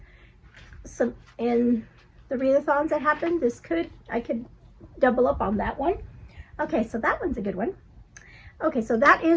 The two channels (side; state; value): both; identical; correlation 1.00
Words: Some in the readathons that happened. I could double up on that one. Okay, so that one's a good one. Okay, so that